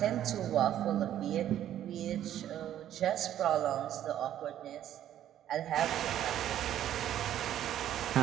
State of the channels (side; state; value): left; quieter; 11.4 dB